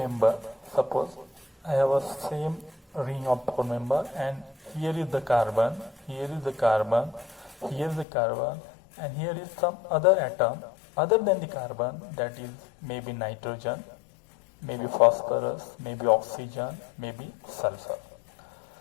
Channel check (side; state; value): right; drops out; at 8.1 s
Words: Suppose I have a same ring of 4 member, and here is the carbon, here is the carbon, here is the carbon, and here is some other atom other than the carbon, that is maybe nitrogen, maybe phosphorus, maybe oxygen, maybe sulfur.